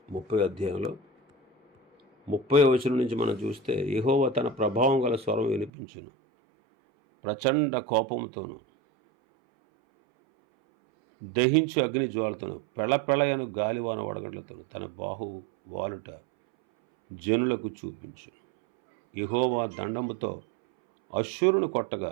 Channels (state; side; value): drops out; left; at 5.7 s